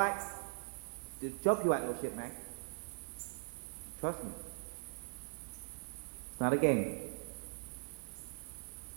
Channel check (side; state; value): left; silent; digital silence